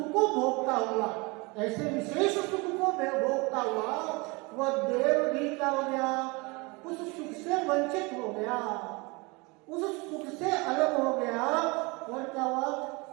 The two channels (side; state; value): left; quieter; 26.8 dB